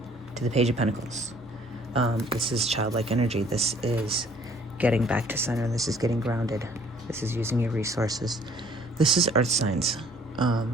To the Page of Pentacles. This is childlike energy. This is getting back to center. This is getting grounded. This is using your resources. This is earth signs. I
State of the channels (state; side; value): normal; both; correlation 0.57